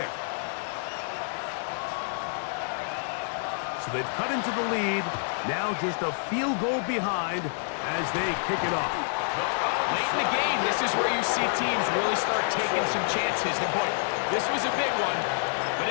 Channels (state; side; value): silent; right; digital silence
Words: So they've cut into the lead. Now just a field goal behind as they kick it off. Late in the game, this is where you see teams really start taking some chances. And boy, this was a big one, but